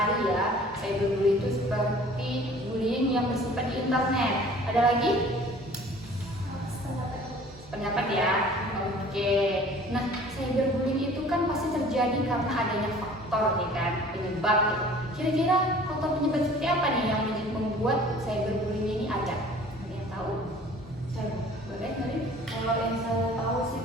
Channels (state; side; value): normal; both; correlation 0.49